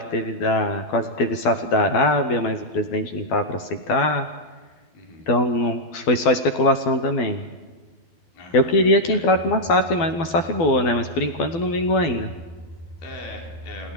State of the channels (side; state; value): right; late; 12 ms